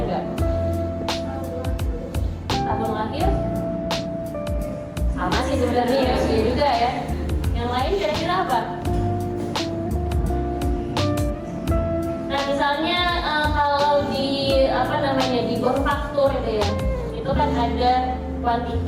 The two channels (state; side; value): identical; both; correlation 1.00